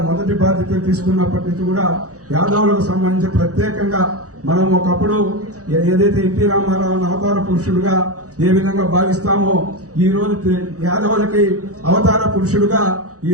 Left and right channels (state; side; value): late; left; 0.66 ms